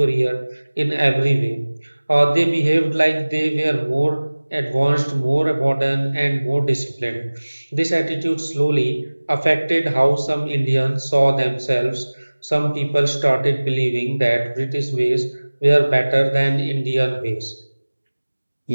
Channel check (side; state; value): both; inverted; correlation -1.00